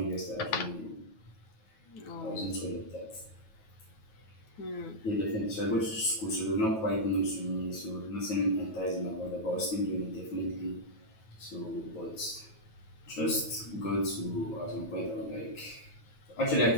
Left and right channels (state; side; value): late; right; 9.3 ms